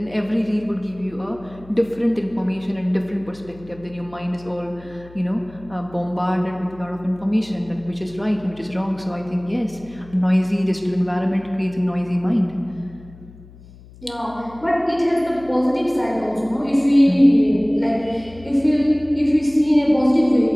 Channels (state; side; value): noise; left; hum, 21 dB below the sound